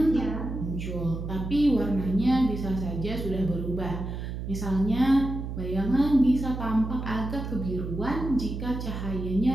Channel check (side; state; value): right; noise; hum, 6 dB below the sound